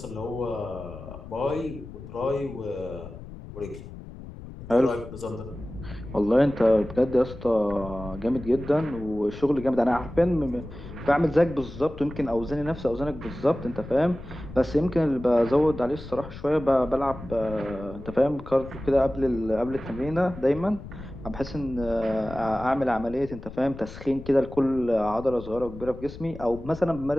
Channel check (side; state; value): left; noise; rumble, 14 dB below the sound